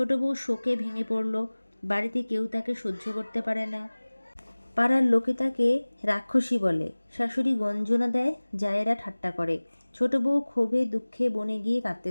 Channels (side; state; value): both; inverted; correlation -1.00